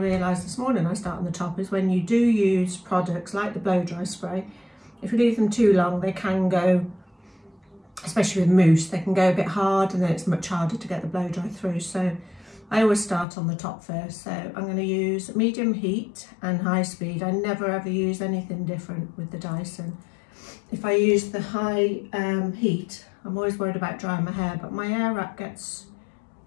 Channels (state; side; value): drops out; right; at 13.2 s